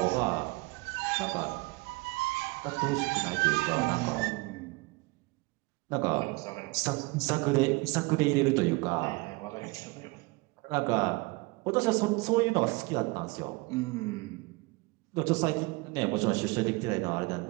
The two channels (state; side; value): quieter; left; 25.2 dB